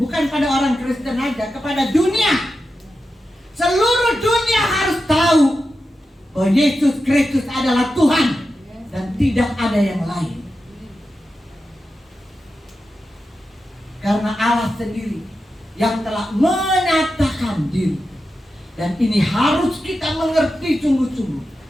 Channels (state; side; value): normal; both; correlation 0.90